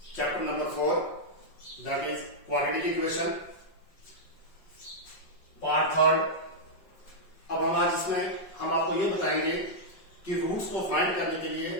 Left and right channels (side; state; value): right; late; 5.4 ms